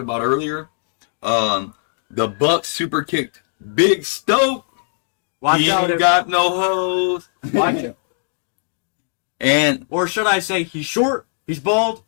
about earlier. The Bucks super kicked Big Stoke. Watch he out. ain't got no hose. Watch it. And or should I say, he's short, he's bald,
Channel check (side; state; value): right; silent; digital silence